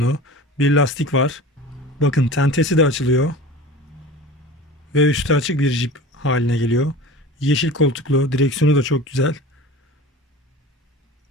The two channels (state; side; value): normal; both; correlation 0.37